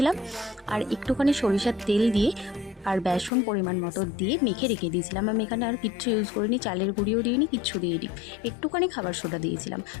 আর একটুখানি সরিষার তেল দিয়ে আর বেসন পরিমাণ মতো দিয়ে মেখে রেখে দিয়েছিলাম। আমি এখানে আর কিচ্ছু ইউজ করিনি, চালের গুঁড়িও দিইনি, কিচ্ছু দিইনি, একটুখানি খাবার সোডা দিয়েছিলাম।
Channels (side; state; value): right; drops out; at 3.3 s